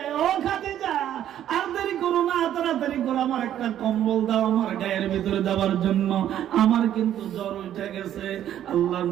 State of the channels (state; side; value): quieter; left; 11.1 dB